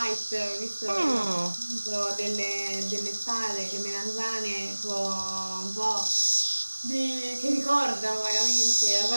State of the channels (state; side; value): inverted; both; correlation -1.00